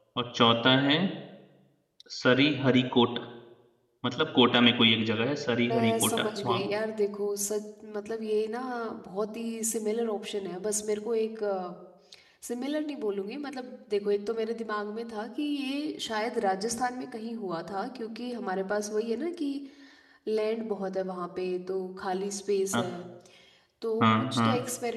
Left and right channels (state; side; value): identical; both; correlation 1.00